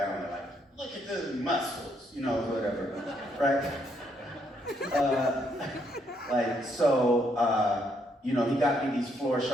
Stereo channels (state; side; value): normal; both; correlation 0.73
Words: they're like, look at the muscles, whatever, right? He got me these floor